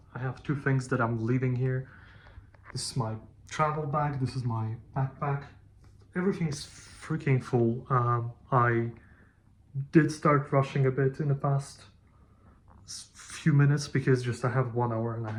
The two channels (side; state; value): both; identical; correlation 1.00